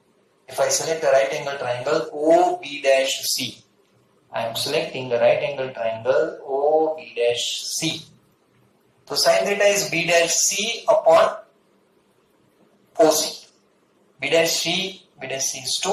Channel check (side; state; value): both; identical; correlation 1.00